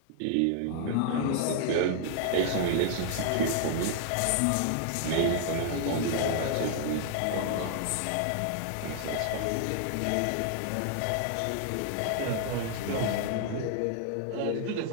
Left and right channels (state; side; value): different; both; correlation 0.00